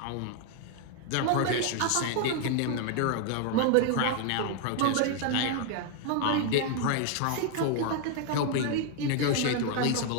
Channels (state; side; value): different; both; correlation 0.00